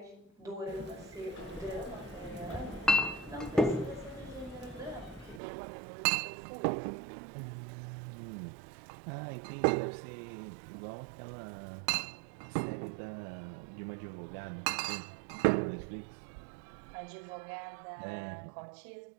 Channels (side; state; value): left; drops out; at 5.4 s